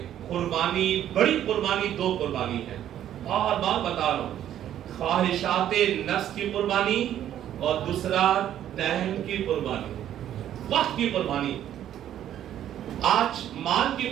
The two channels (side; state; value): left; quieter; 11.2 dB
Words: قربانی، بڑی قربانی دو قربانی ہے، بار بار بتا رہا ہوں. خواہشات نفس کی قربانی اور دوسرا ٹائم کی قربانی، وقت کی قربانی. آج مال کی